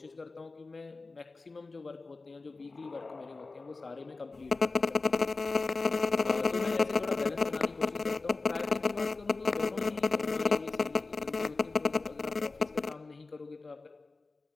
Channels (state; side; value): quieter; right; 3.7 dB